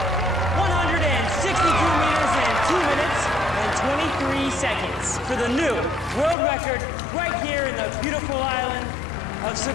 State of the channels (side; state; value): right; drops out; at 6.4 s